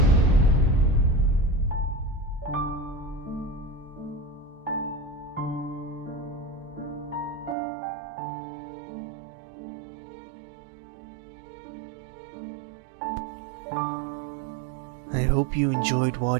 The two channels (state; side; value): drops out; left; at 7.6 s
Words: I hope you enjoyed